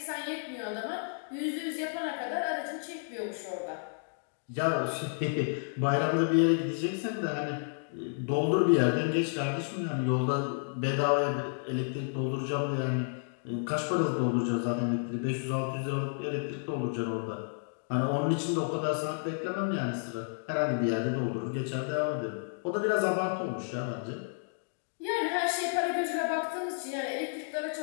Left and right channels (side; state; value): right; silent; digital silence